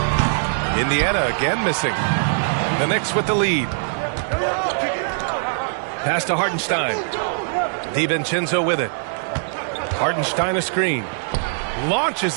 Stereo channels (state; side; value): silent; left; digital silence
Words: Indiana again missing. The Knicks with the lead. Pass to Hartenstein. DiVincenzo with it. Hartenstein a screen.